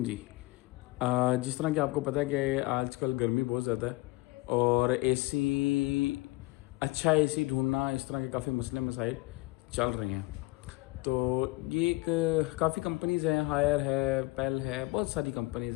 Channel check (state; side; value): quieter; right; 22.4 dB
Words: जी। जिस तरह कि आपको पता है कि आजकल गर्मी बहुत ज़्यादा है और एसी अच्छा एसी ढूंढना इस तरह के काफ़ी मसले मसाइल चल रहे हैं। तो ये एक काफ़ी कंपनीज़ हैं, हायर है, पेल है, बहुत सारी